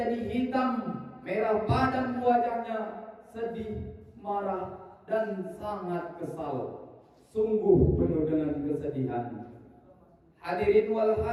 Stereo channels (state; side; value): identical; both; correlation 1.00